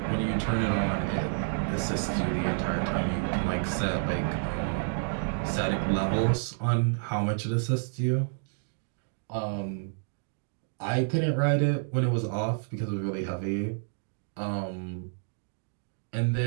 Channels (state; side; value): silent; left; digital silence